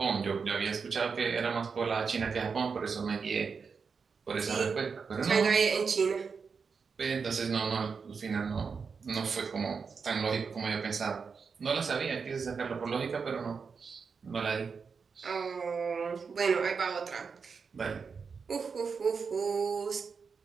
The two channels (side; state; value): left; quieter; 5.5 dB